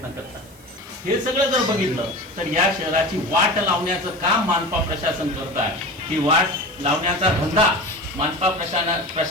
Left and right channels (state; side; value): noise; left; hiss, 26 dB below the sound